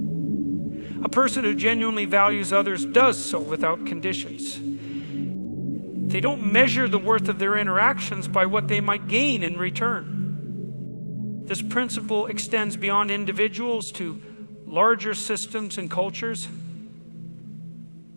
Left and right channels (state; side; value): inverted; both; correlation -1.00